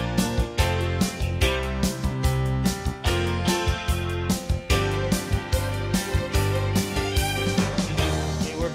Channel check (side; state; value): both; identical; correlation 1.00